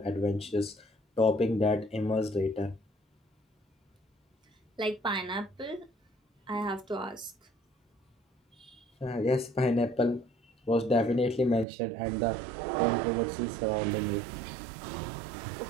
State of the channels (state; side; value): drops out; left; at 11.7 s